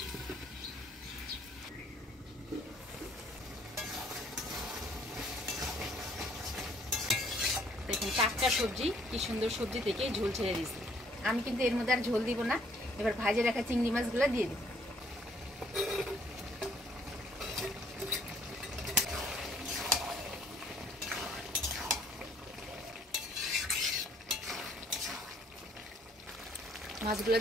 দেখুন টাটকা সবজি, কি সুন্দর সবজি থেকে ঝোল ছেড়ে দিয়েছি। আমি কিন্তু এর মধ্যে আর ঝোল দিব না। এবার ভাজে রাখা চিংড়ি মাছগুলো দিয়ে দিব। মাছগুলো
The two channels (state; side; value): normal; both; correlation 0.62